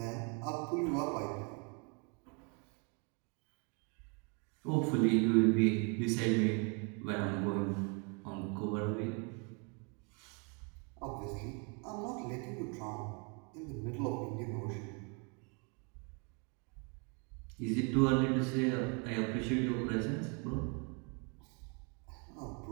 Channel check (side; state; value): left; quieter; 34.9 dB